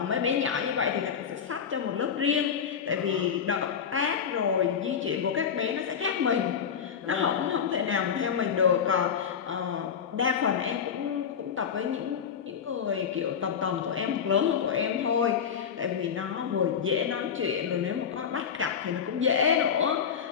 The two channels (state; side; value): quieter; right; 7.4 dB